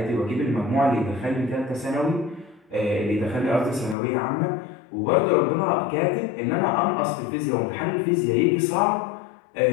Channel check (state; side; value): drops out; right; at 4.0 s